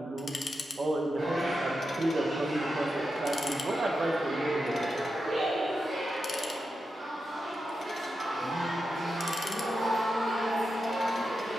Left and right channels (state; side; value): normal; both; correlation 0.89